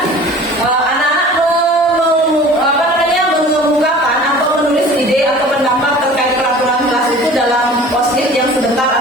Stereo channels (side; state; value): both; normal; correlation 0.44